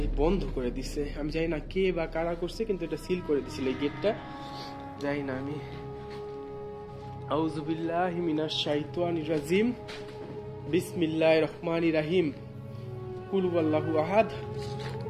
বন্ধ করে দিছে, আমি জানি না কে বা কারা করছে, কিন্তু এটা সিল করে দিছিল এই গেটটা, জানি না আমি। আউযু বিল্লাহি মিনাশ শাইতানির রাজিম, বিসমিল্লাহির রহমানির রহিম। কুল হুয়াল্লাহু আহাদ,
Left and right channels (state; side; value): identical; both; correlation 1.00